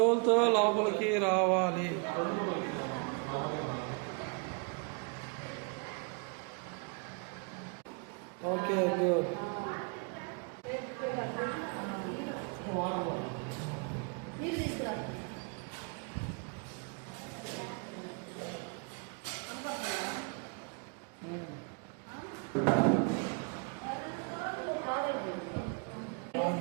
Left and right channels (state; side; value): quieter; left; 35.5 dB